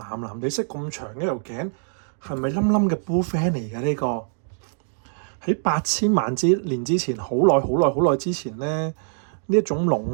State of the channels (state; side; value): silent; left; digital silence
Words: 藍地色咁長嘅條頸，係咪冧冧嘅 bullfan 嚟嘅呢個？喺8000萬年之前，好耐好耐好耐之前咧，呢一種